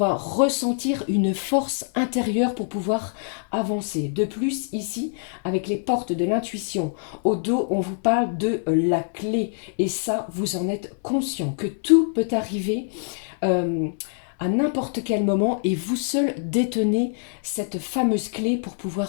ressentir une force intérieure pour pouvoir avancer. De plus, ici, avec les portes de l'intuition au dos, on vous parle de la clé, et ça, vous en êtes conscient, que tout peut arriver euh, à n'importe quel moment, et vous seul détenez cette fameuse clé pour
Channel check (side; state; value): right; silent; 62 dB below the other